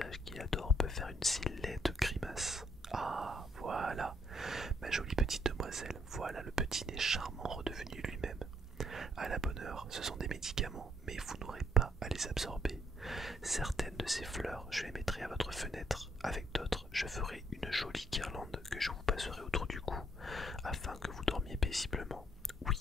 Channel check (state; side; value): normal; both; correlation 0.71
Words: qu'il adore peut faire une si laide grimace. Ah, voilà, ma jolie petite demoiselle, voilà le petit nez charmant redevenu lui-même. À la bonne heure, ce sont des médicaments, mais vous n'aurez pas à les absorber. Certaines de ces fleurs, je les mettrai à votre fenêtre. Avec d'autres, je ferai une jolie guirlande que je vous passerai autour du cou, afin que vous dormiez paisiblement.